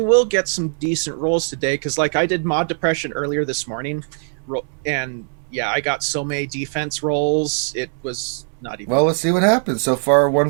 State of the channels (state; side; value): silent; left; 65 dB below the other